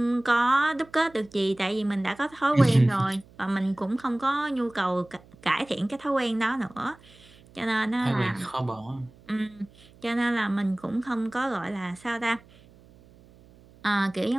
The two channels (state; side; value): noise; right; hum, 26 dB below the sound